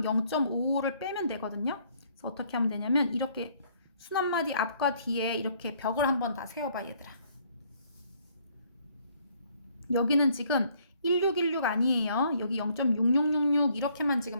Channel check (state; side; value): inverted; both; correlation -0.64